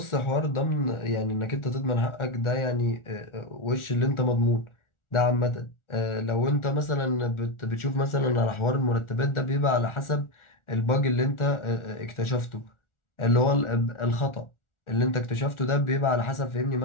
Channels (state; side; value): late; right; 1.4 ms